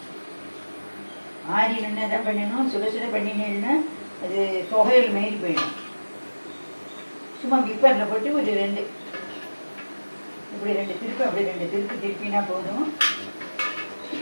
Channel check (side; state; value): both; inverted; correlation -1.00